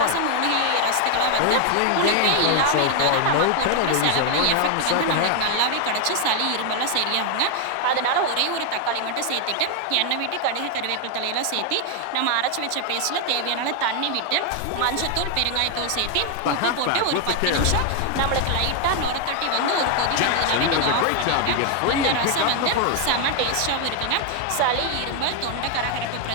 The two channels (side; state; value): both; different; correlation 0.00